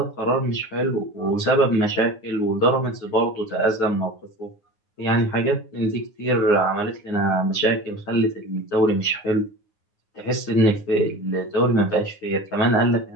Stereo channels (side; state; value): right; late; 9.7 ms